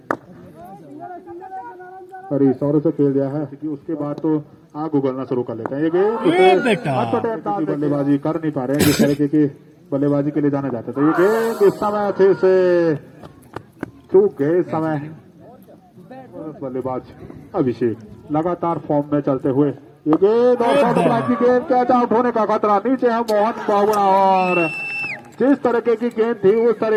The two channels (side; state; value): both; identical; correlation 1.00